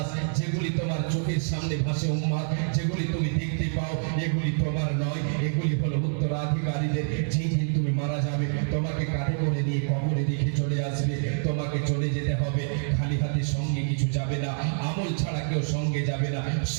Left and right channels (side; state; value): left; silent; digital silence